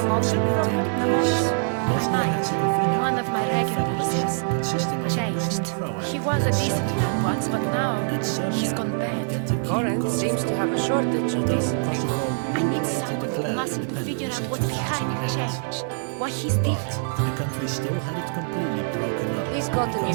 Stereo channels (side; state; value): left; silent; digital silence